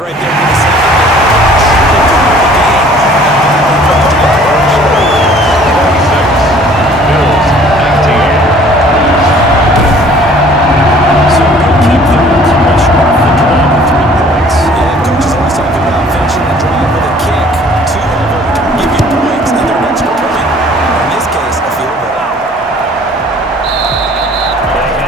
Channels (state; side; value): normal; both; correlation 0.53